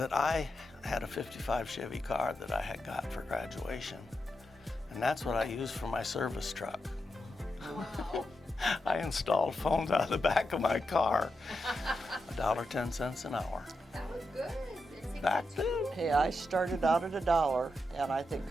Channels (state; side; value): normal; both; correlation 0.86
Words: I had a '55 Chevy car that I had got for graduation. And that's what I used for my service truck. Wow. I installed phones out of the back of my car. $1.10 an hour. That was good. Back then. Hey, I started out at $1, and I think